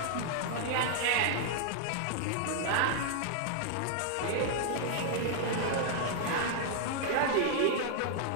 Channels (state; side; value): different; both; correlation 0.00